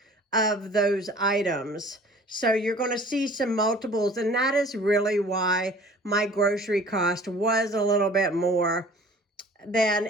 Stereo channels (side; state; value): both; normal; correlation 0.48